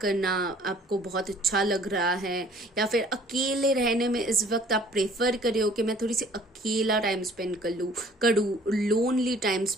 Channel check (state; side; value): normal; both; correlation 0.54